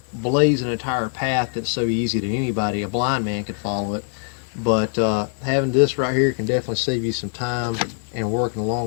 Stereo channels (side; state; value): right; silent; digital silence